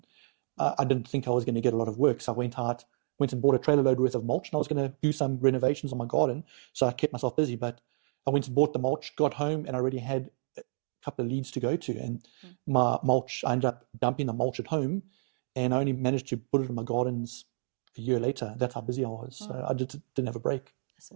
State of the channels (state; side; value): silent; left; digital silence